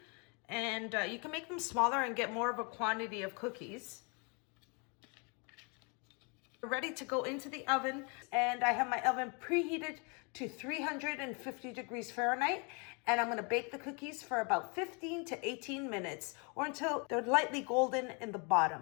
and you can make them smaller and get more of a quantity of cookies. Ready to go into the oven, and I have my oven preheated to 350 degrees Fahrenheit, and I'm going to bake the cookies for about 15 to 18 minutes, or until they're lightly golden in the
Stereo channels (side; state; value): right; quieter; 33.4 dB